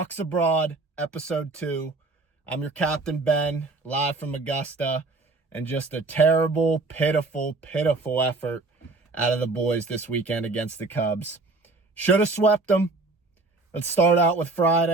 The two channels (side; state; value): left; quieter; 3.4 dB